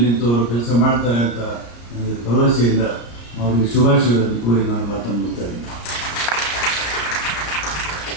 ನಿಂತವರು ಕೆಲಸ ಮಾಡ್ತಾರೆ ಅಂತ ನನಗೆ ಭರವಸೆಯಿಂದ ಅವರಿಗೆ ಶುಭಾಶಯಗಳನ್ನು ಕೋರಿ ನಾನು ಮಾತನ್ನು ಮುಗಿಸ್ತೇನೆ.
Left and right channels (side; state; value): right; late; 34 ms